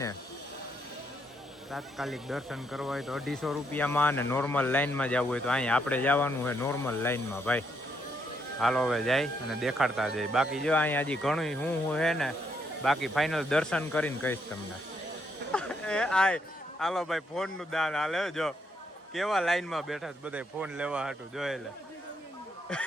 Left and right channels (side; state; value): both; normal; correlation 0.75